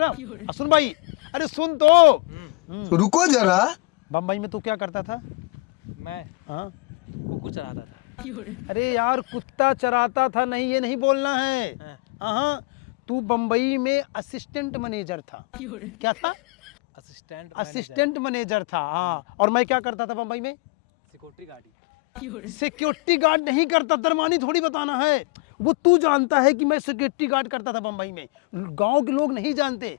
सुन भाई, अरे सुन तो रुको जरा। बम्बई में तू क्या करता था? मैं हाँ? कुकुर चराता था। अरे यार कुत्ता चराता था नहीं, ये नहीं बोलना है। हाँ। हाँ, तू बम्बई में असिस्टेंट मैनेजर था। क्या था? असिस्टेंट मैनेजर था। हाँ, और मैं क्या करता था बम्बई में? Security guard. सिक्योरिटी गार्ड नहीं करता, दरमानी थोड़ी बताना है। वो तू जानता है कि मैं सिक्योरिटी गार्ड करता था बम्बई में, गांव के लोग नहीं जानते।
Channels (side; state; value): right; quieter; 26.6 dB